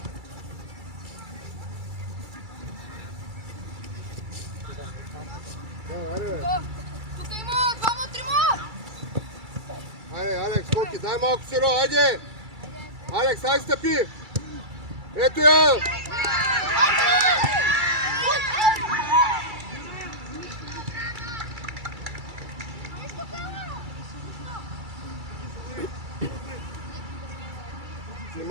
Тук има двама, трима! Айде, Алекс, Коки, дай малко сиро, айде! Алекс, ай стъпи! Ето я!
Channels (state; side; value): late; left; 2.3 ms